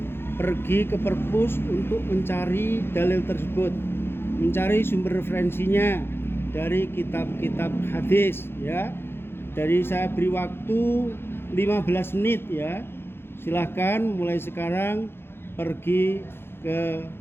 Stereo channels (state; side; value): late; right; 0.11 ms